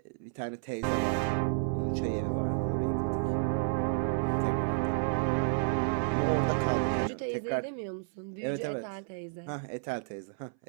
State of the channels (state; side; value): silent; left; 57 dB below the other